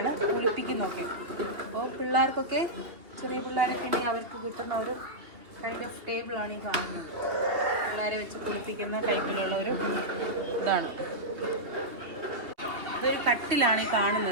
കുളിപ്പിക്കുന്നതൊക്കെ. അപ്പോൾ പിള്ളേർക്കൊക്കെ, ചെറിയ പിള്ളേരൊക്കെ ഉണ്ടെങ്കിൽ അവർക്ക് കിട്ടുന്ന ഒരു കൈൻഡ് ഓഫ് ടേബിളാണ് ഈ കാണുന്നത്. പിള്ളേരെ വെച്ച് കുളിപ്പിക്കുന്ന ടൈപ്പിലുള്ള ഒരു ഇതാണ്. ഇതൊരു കട്ടിലാണ് ഈ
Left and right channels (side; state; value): left; late; 2.8 ms